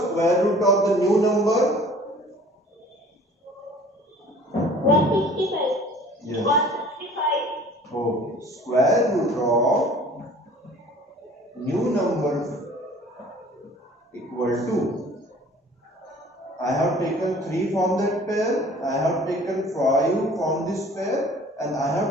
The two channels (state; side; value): normal; both; correlation 0.49